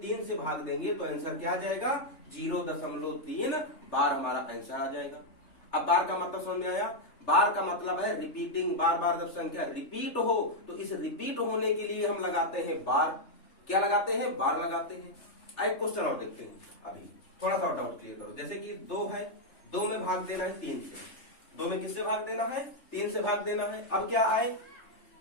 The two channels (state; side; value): late; right; 3.4 ms